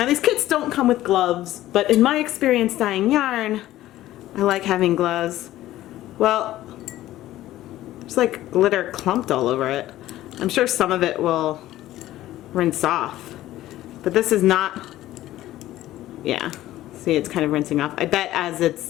these kits don't come with gloves, but in my experience dyeing yarn, I like having gloves. Well, there's like glitter clumped all over it. I'm sure some of it will rinse off, but this is not, yeah, see it's kind of rinsing off. I bet as it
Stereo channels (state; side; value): quieter; right; 14.8 dB